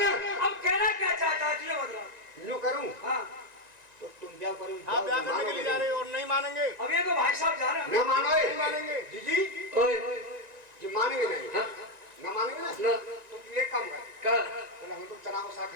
अब कहना क्या चाहता है तुझे मतलब? यूं करूं हाँ तो तुम ब्याह करो हाँ ब्याह करने के लिए जा रहे हो और नहीं मानेंगे। अब ये तो भाई साहब जा रहे हैं। न मानो नहीं मानेंगे। जी ओए जी मानेंगे नहीं हाँ न मानेंगे ना ना तो तुम एक काम कर कर चलो हम तो चना को साग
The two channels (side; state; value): left; late; 1.9 ms